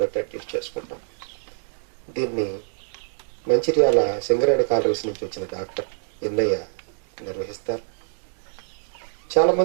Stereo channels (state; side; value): silent; left; 59 dB below the other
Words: బట్టి అడ్జస్ట్ చేసుకుంటాం. దీన్ని మంచిర్యాల సింగరేణి కాలరీస్ నుంచి వచ్చిన డాక్టర్ ఎన్నయ్య నిర్వహిస్తారు.